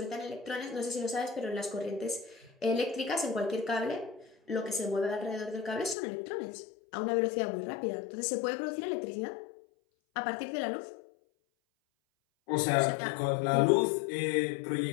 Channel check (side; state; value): right; drops out; at 6.0 s